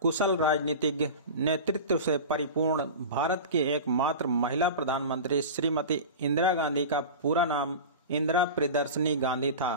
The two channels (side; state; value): both; inverted; correlation -0.30